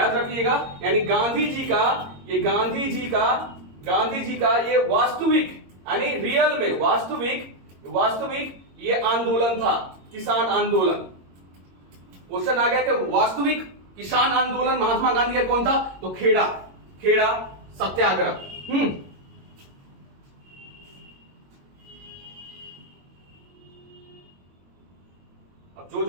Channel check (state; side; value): late; left; 22 ms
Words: रखिएगा यानी गांधी जी का ये वास्तविक यानी रियल में वास्तविक ये आंदोलन था, किसान आंदोलन। क्वेश्चन आ गया कि वास्तविक किसान आंदोलन महात्मा गांधी का कौन था? तो खेड़ा सत्याग्रह। अब